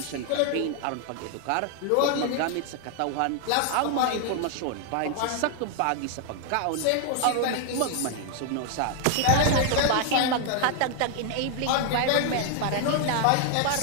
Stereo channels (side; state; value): both; different; correlation 0.00